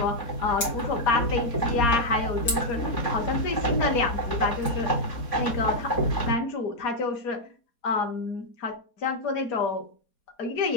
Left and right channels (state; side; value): late; right; 4.2 ms